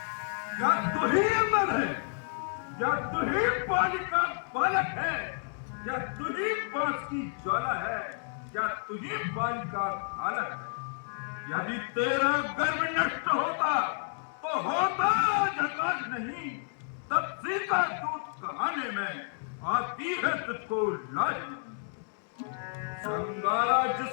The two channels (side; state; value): right; silent; digital silence